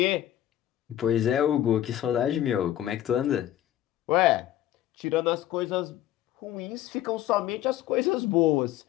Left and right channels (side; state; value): right; quieter; 12.7 dB